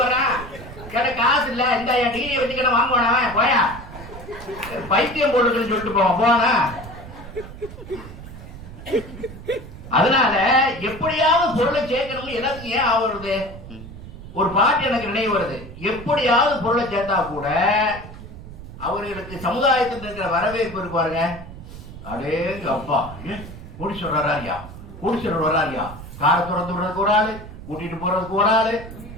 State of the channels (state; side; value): noise; right; rumble, 14 dB below the sound